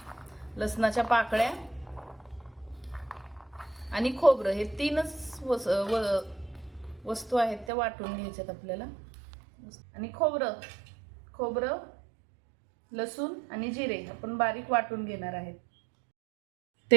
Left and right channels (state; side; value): drops out; left; at 7.7 s